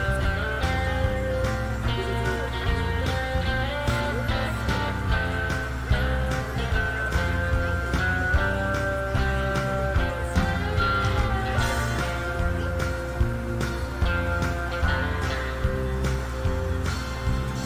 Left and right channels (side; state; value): both; identical; correlation 1.00